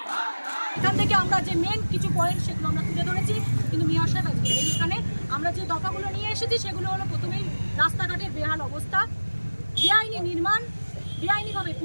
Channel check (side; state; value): both; inverted; correlation -1.00